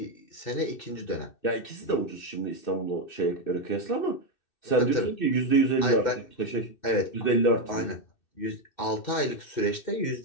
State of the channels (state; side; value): late; right; 2.6 ms